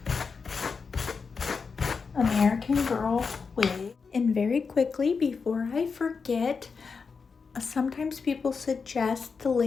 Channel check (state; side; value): quieter; right; 5.2 dB